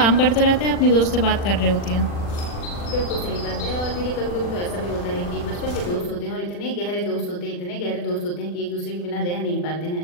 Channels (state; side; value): late; right; 40 ms